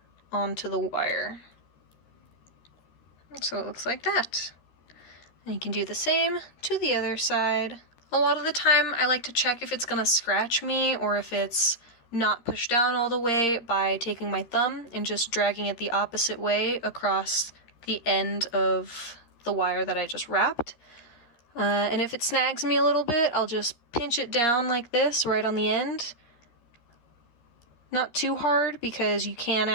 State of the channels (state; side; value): late; right; 13 ms